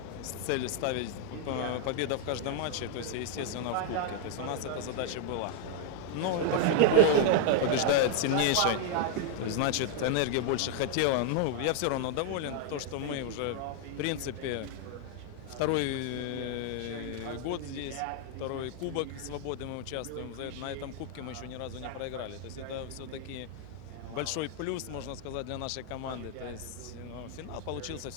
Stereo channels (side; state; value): both; different; correlation 0.00